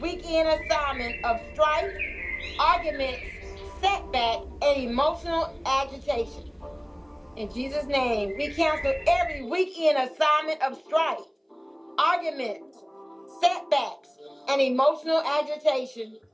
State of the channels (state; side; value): identical; both; correlation 1.00